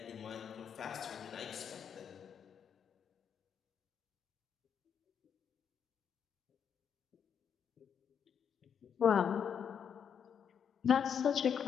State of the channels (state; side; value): quieter; right; 7.7 dB